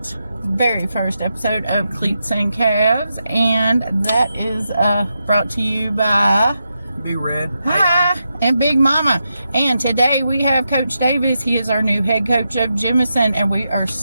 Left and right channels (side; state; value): both; inverted; correlation -0.86